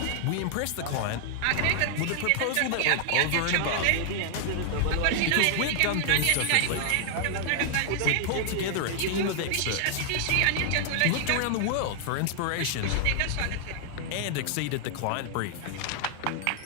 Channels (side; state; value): both; different; correlation 0.00